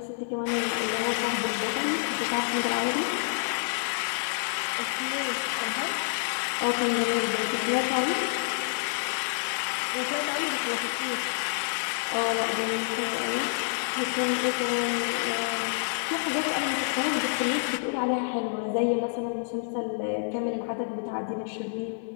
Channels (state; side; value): silent; right; 59 dB below the other